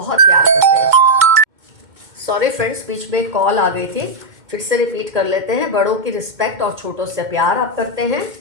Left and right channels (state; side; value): late; left; 2.1 ms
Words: प्यार करते हैं। सॉरी फ्रेंड्स, बीच में कॉल आ गई थी, फिर से रिपीट कर लेते हैं। बड़ों की रिस्पेक्ट और छोटों से प्यार आप करते हैं।